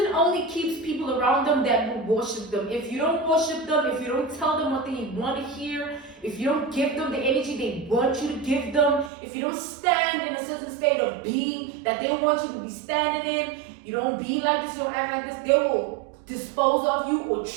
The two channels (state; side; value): drops out; left; at 9.1 s